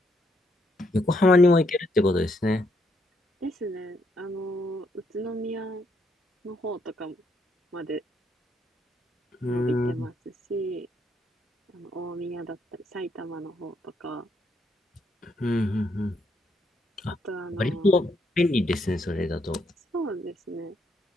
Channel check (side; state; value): both; normal; correlation 0.75